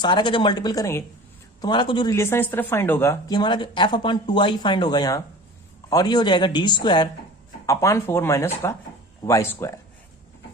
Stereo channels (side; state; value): both; normal; correlation 0.40